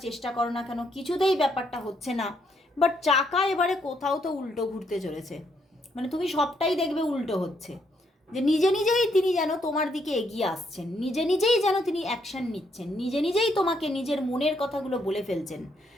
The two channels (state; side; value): normal; both; correlation 0.74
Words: চেষ্টা করো না কেন, কিছুতেই ব্যাপারটা হচ্ছে না। বাট চাকা এবারে কোথাও তো উল্টো ঘুরতে চলেছে, মানে তুমি সবটাই দেখবে উল্টো হচ্ছে, যে নিজে নিজেই তিনি যেন তোমার দিকে এগিয়ে আসছেন, নিজে নিজেই যেন তিনি অ্যাকশন নিচ্ছেন, নিজে নিজেই তোমাকে নিজের মনের কথাগুলো বলে ফেলছেন।